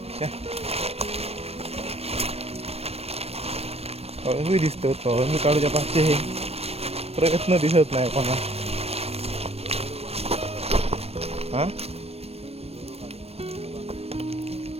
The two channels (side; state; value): left; late; 0.29 ms